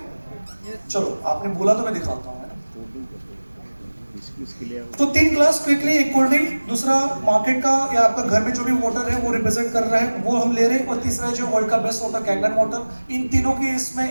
चलो, आपने बोला तो मैं दिखाता हूँ। तो 3 ग्लास क्विकली, एक कोल्ड ड्रिंक, दूसरा मार्केट का या आपका घर में जो भी वाटर है वो रिप्रेजेंट कर रहा है वो हम ले रहे हैं, और तीसरा जो वर्ल्ड का बेस्ट वाटर कैंगन वाटर। इन तीनों के इसमें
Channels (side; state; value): both; inverted; correlation -1.00